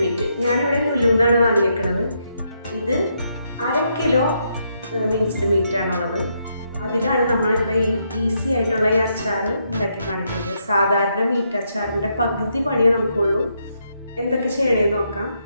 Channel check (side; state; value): both; inverted; correlation -0.78